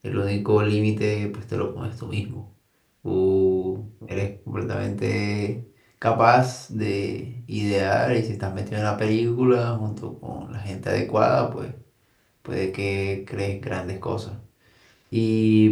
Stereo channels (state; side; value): identical; both; correlation 1.00